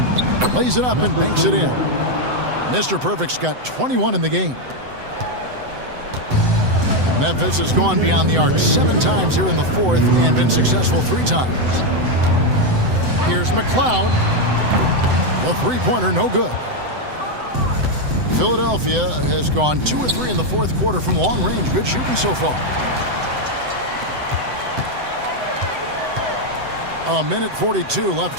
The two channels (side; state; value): left; late; 7.9 ms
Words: Lays it up and banks it in. Mr. Perfect's got 21 in the game. Memphis has gone beyond the arc 7 times here in the 4th and been successful 3 times. Here's McLeod. The three-pointer no good. Philadelphia has gone 2 of 3 in the 4th quarter from long range. Good shooting so far. A minute 42